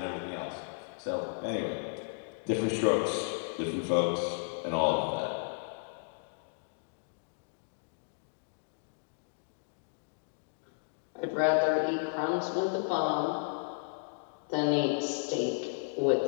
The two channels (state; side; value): silent; right; digital silence